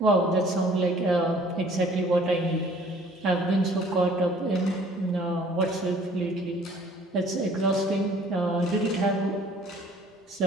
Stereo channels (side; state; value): both; normal; correlation 0.55